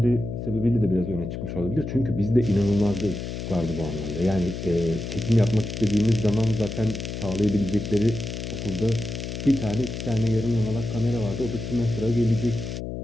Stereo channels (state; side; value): noise; left; hum, 6 dB below the sound